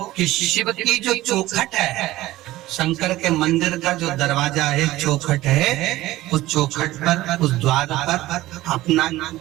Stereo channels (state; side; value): quieter; left; 16.7 dB